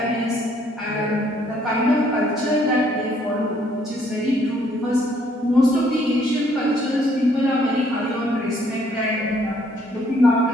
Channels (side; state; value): both; normal; correlation 0.65